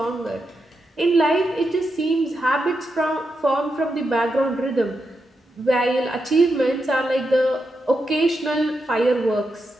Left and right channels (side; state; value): both; normal; correlation 0.86